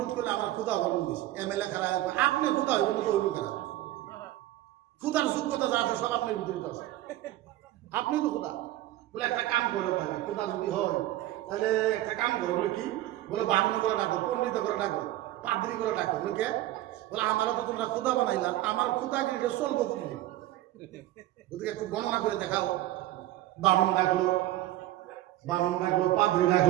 করলে আমার খুদা বর্ণন দিয়েছে, এমএলএ খারাপ, আপনি খুদা হইবেন তো হইব কেন? খুদার যোগ্যতা যা আছে সব আপনার ভিতরে আছে, আপনি তো খুদা। বলে একটা কাম করে থাকে, খুদা যদি হয় তাহলে একটা কাম করো। বলে কি? বলে বামুনি করে ডাকো, পণ্ডিত করে ডাকো, পাদ্রি করে ডাকো। বলে কে? বলে আমারও তো তোমরা খুদা বানাইলা, আমার খুদাগিরিটা চলবো প্রতিদিন, ওদিকে একটু গণনা করে দেখাও। বামুন ডাকলো, বামুন ডাকলো, পাদ্রি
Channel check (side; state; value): left; quieter; 15.2 dB